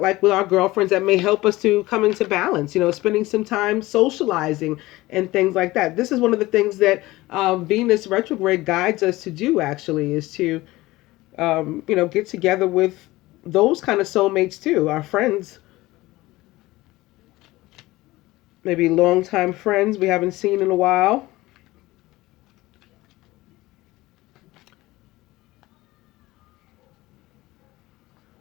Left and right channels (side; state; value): right; quieter; 19.0 dB